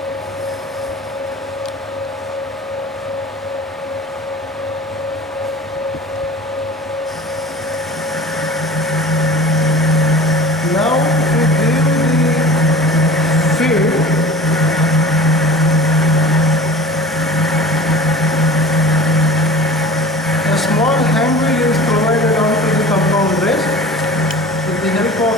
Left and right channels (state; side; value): normal; both; correlation 0.40